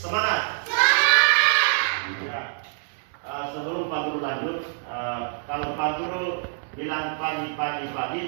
Ya. Sebelum Pak Guru lanjut, kalau Pak Guru bilang pagi,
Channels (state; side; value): silent; left; 62 dB below the other